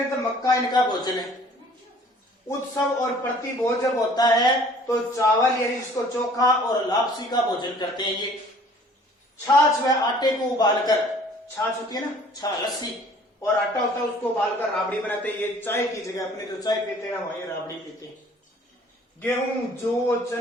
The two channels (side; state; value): both; normal; correlation 0.53